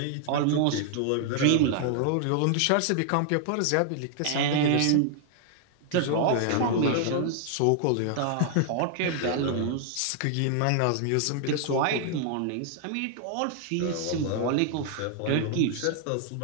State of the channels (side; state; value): both; different; correlation 0.00